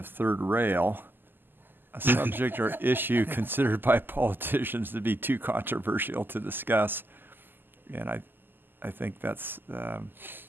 third rail, a subject or issue considered by politicians to be too controversial to discuss. And I think that's,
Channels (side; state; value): left; late; 0.094 ms